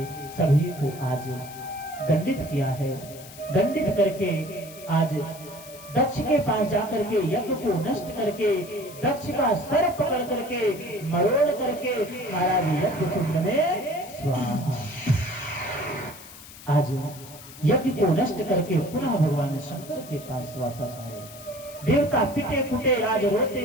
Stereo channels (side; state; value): left; noise; hiss, 17 dB below the sound